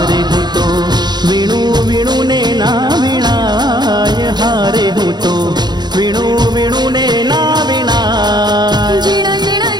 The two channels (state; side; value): late; left; 0.21 ms